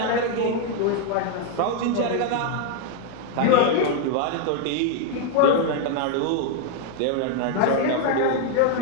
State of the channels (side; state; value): both; different; correlation 0.00